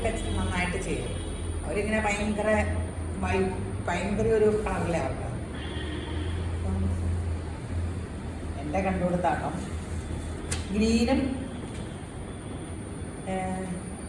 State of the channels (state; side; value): identical; both; correlation 1.00